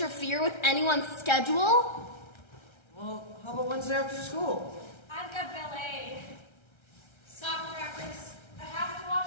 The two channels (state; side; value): late; right; 1.3 ms